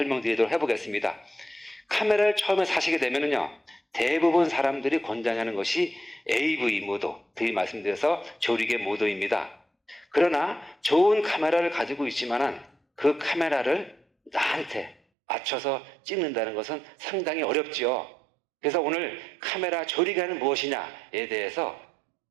해보겠습니다. 카메라를 처음에 사시게 되면요, 대부분 사람들이 권장하는 것이 AV 모드, 드리 말씀드려서 조리개 모드입니다. 그러나 좋은 카메라를 가지고 있지만은 그 카메라를 나한테 맞춰서 찍는다는 것은 상당히 어렵죠. 그래서 오늘 카메라 조리개는 무엇이냐에 대해서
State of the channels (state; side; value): drops out; left; at 15.0 s